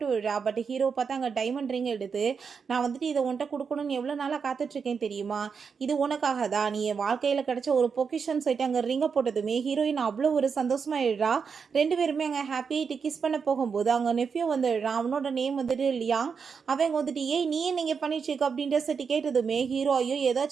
விடுறா. பட் ஹீரோ பார்த்தா அங்கே டைமண்ட் ரிங் எடுத்து, நான் வந்துட்டு இதை உன்ட்ட கொடுக்கணும்னு எவ்வளோ நாளாக காத்துட்ருக்கேன் தெரியுமா, இது உனக்காக தான், நீ என் வாழ்க்கையில் கிடைச்ச ஒரு பொக்கிஷன் சொல்லிட்டு அங்கே ரிங்கை போட்டதுமே ஹீரோயின் அவ்வளோ ஒரு சந்தோஷமாயிடுறா. 2 பேருமே அங்கே ஹாப்பியாகிட்டு கிஸ் பண்ண போகும்போது அங்கே நெஃப்யூ வந்துடுறான். அவனோட நேம் வந்துட்டு லியாங். அவங்க வந்துட்டு ஏய் நீ நீங்கள் பண்ணிட்டுருக்க அப்படின்ற சொல்லிட்டு கேட்டதுமே ஹீரோ ஐயோ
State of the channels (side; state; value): left; quieter; 5.9 dB